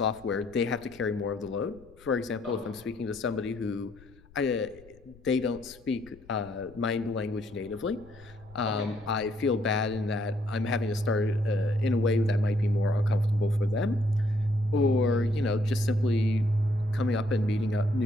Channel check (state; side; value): noise; left; rumble, 24 dB below the sound